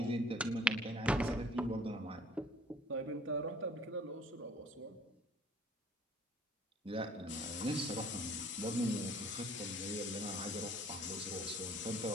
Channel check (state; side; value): normal; both; correlation 0.53